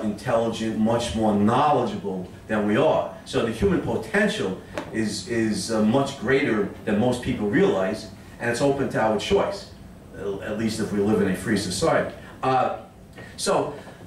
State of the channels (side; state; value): both; identical; correlation 1.00